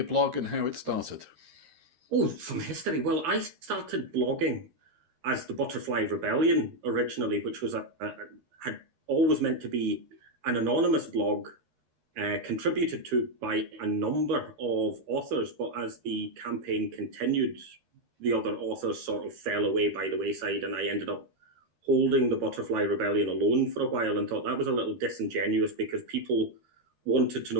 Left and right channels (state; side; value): late; left; 13 ms